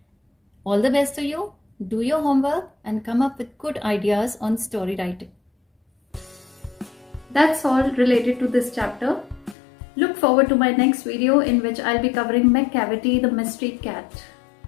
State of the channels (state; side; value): drops out; right; at 9.6 s